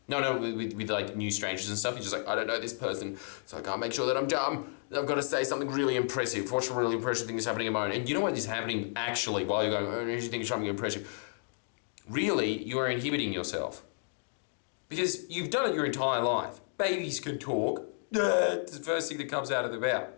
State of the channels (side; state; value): right; silent; 56 dB below the other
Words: With like new strangers and stuff. You're just like, I don't know this person, so I can't make sure that I'm dumb. I've got to say something really impressive. What's a really impressive thing that's happening at the moment? And you know what is happening actually while you're going, oh, you think it's something impressive? Really, you are inhibiting yourself. Because you've done it your entire life. Babies can talk. It's the first thing that comes out of their mouth.